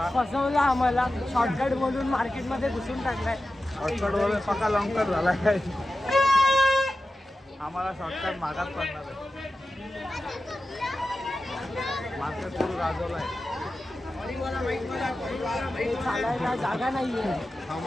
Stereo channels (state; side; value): normal; both; correlation 0.93